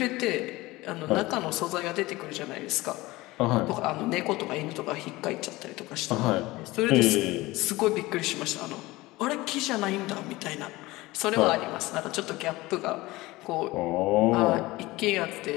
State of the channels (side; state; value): right; quieter; 20.0 dB